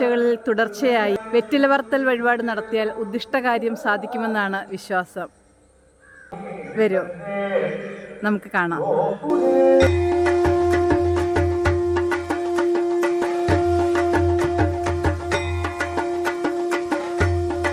തുടർച്ചയായി വെറ്റില പറത്തൽ വഴിപാട് നടത്തിയാൽ ഉദ്ദിഷ്ടകാര്യം സാധിക്കുമെന്നാണ് വിശ്വാസം. വരൂ, നമുക്ക് കാണാം.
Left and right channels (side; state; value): both; identical; correlation 1.00